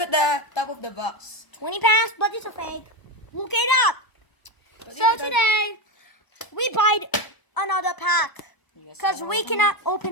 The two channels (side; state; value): right; late; 1.0 ms